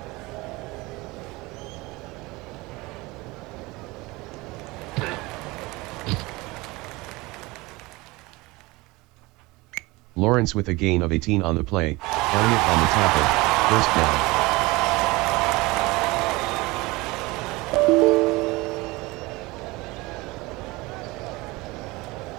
Lawrence with a gain of 18 on the play, Elliott on the tackle, first down.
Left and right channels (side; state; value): left; quieter; 22.4 dB